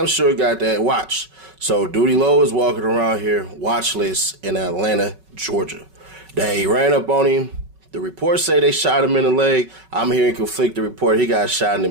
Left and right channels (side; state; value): left; late; 5.3 ms